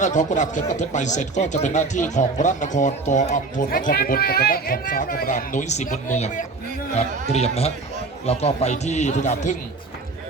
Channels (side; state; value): left; quieter; 3.8 dB